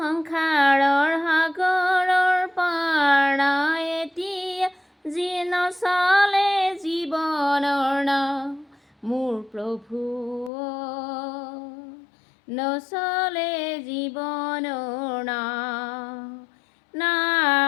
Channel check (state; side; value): drops out; right; at 10.5 s